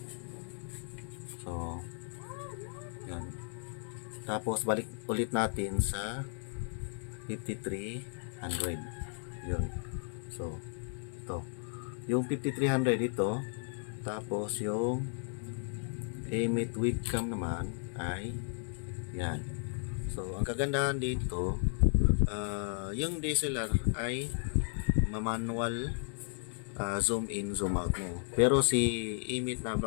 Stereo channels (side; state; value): right; silent; 55 dB below the other